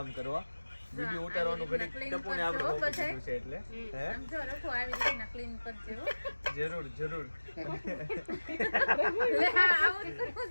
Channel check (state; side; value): inverted; both; correlation -1.00